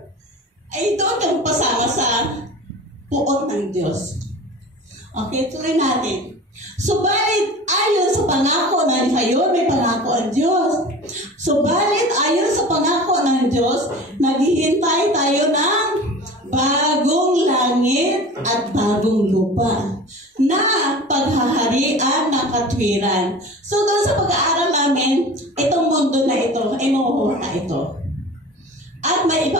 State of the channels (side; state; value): both; normal; correlation 0.38